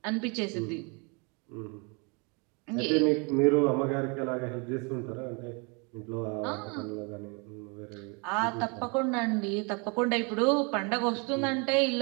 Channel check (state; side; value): quieter; left; 32.0 dB